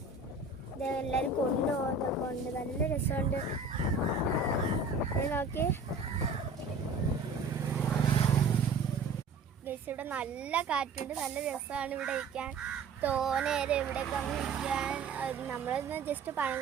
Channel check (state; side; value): quieter; left; 4.0 dB